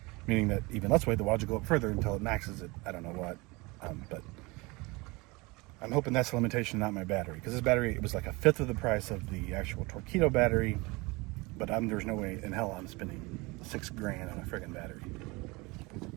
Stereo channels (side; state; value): left; quieter; 24.7 dB